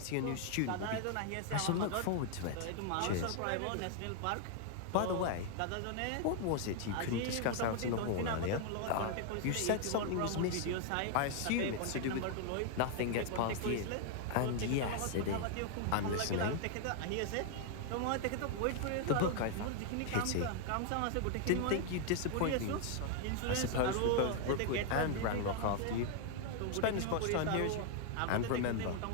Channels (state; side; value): different; both; correlation 0.00